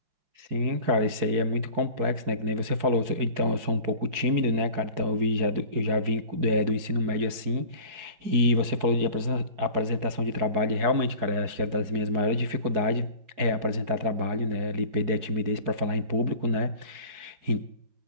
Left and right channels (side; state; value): left; late; 4.7 ms